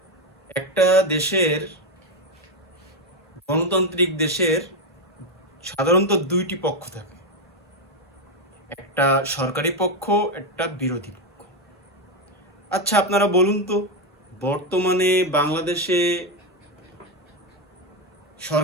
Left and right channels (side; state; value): both; normal; correlation 0.08